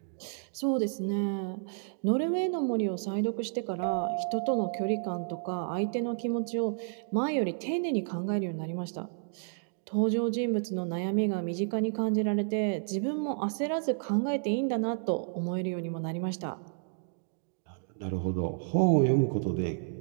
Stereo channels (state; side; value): silent; left; digital silence